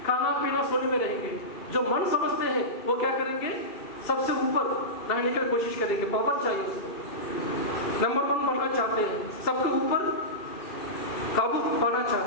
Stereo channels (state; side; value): late; right; 2.7 ms